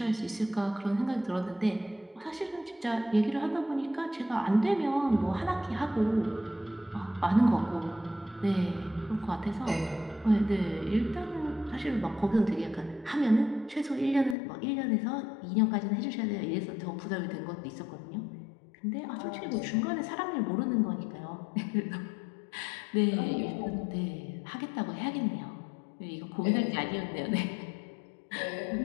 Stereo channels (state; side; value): drops out; right; at 14.4 s